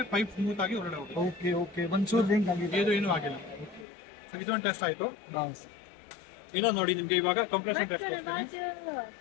ಪೈಪ್ ಸ್ಮೂತ್ ಆಗಿ ಹೊರಗಡೆ ಹೋಗುತ್ತೆ. ಓಕೆ ಒಂಚೂರು ರಿಂಗ್ ಆಗಿದೆ, ಇದು ಏನೂ ಆಗಿಲ್ಲ. ಸೊ ಇದೊಂದು ಟೆಸ್ಟ್ ಆಯ್ತು. ಇನ್ನೊಂದು ನೋಡಿ, ನಿಮ್ಗೆ ಇವಾಗ ಕಂಪ್ರೆಷನ್ ಟೆಸ್ಟ್ ಕೊಡ್ತೀನಿ.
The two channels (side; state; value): right; drops out; at 3.9 s